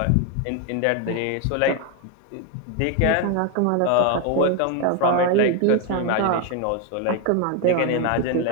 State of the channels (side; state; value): both; different; correlation 0.01